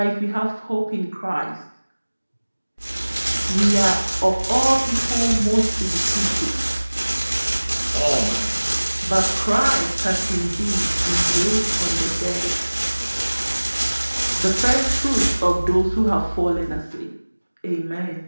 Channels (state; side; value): inverted; both; correlation -1.00